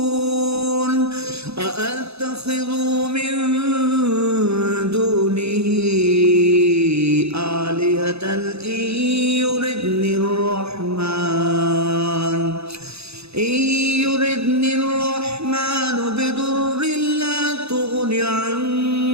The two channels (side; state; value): left; late; 0.79 ms